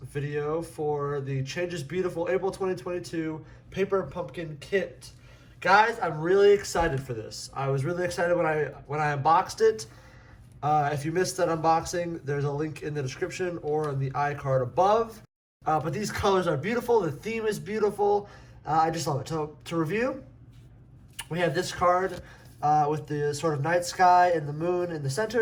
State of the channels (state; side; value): identical; both; correlation 1.00